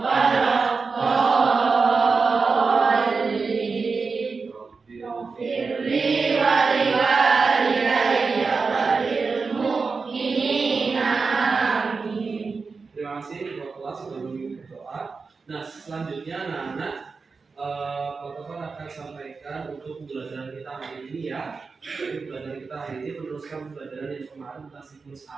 Firli wa liwalidayya wa lil mu'minina amin. Terima kasih ketua kelas sudah memimpin berdoa. Nah, selanjutnya anak-anak Pak Topan akan sampaikan untuk pembelajaran kita hari ini ya. Jadi pembelajaran kita hari ini meneruskan pembelajaran yang kemarin tentang siklus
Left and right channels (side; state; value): left; quieter; 4.6 dB